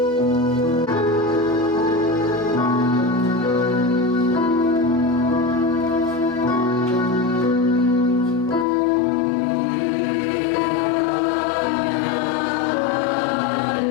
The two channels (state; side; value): drops out; right; at 8.7 s